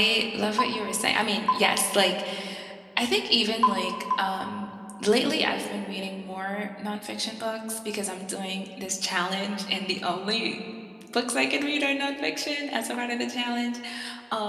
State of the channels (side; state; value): both; identical; correlation 1.00